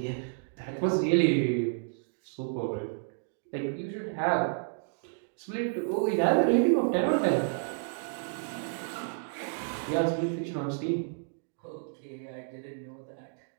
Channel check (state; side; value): silent; left; digital silence